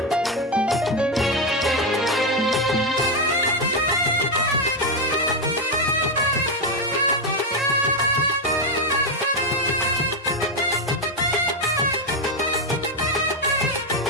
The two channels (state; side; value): normal; both; correlation 0.06